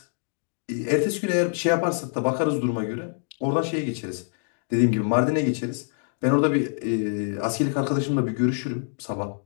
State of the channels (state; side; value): silent; right; digital silence